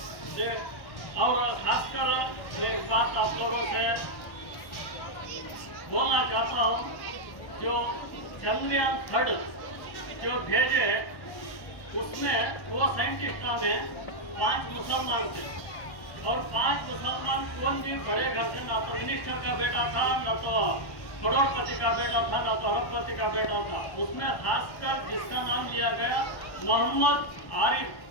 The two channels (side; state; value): right; late; 1.1 ms